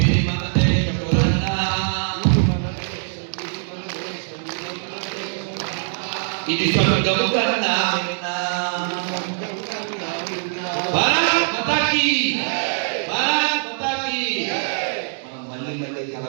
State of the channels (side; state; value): left; silent; 64 dB below the other